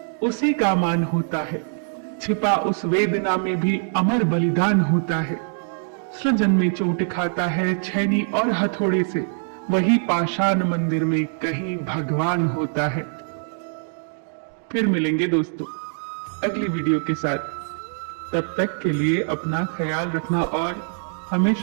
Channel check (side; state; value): left; silent; digital silence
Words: उसी का मान होता है, छिपा उस वेदना में भी अमर बलिदान होता है। सृजन में चोट खाता है छैनी और हथौड़े से, वही पाषाण मंदिर में कहीं भगवान होता है। फिर मिलेंगे दोस्तों अगली वीडियो के साथ। तब तक के लिए अपना ख्याल रखना और